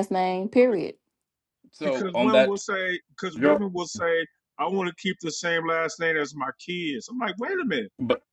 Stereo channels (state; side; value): identical; both; correlation 1.00